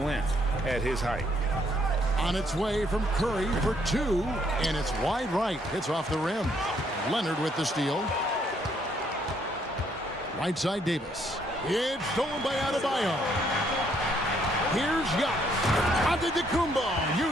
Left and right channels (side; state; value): both; normal; correlation 0.69